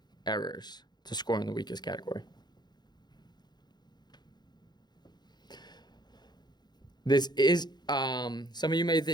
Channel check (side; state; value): right; late; 0.21 ms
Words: errors to score in the weakest category. This is, some of you may